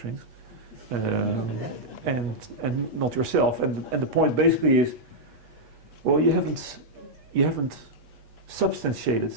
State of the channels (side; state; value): left; late; 8.3 ms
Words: and not yourself. And the point basically is, well, you haven't substantiated